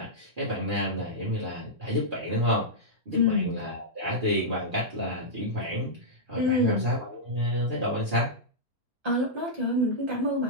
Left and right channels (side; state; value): both; normal; correlation -0.10